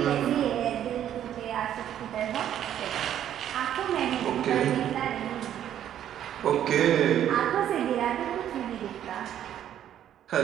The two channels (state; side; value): quieter; left; 10.7 dB